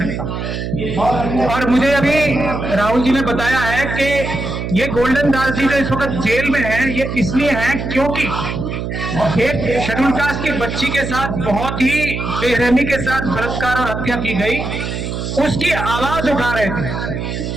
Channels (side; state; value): right; noise; hum, 4 dB below the sound